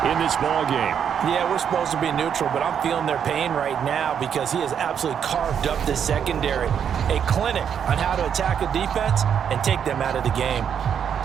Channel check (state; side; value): quieter; left; 8.1 dB